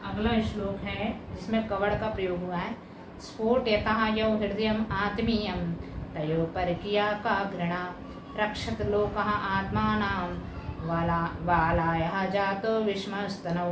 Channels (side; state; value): both; identical; correlation 1.00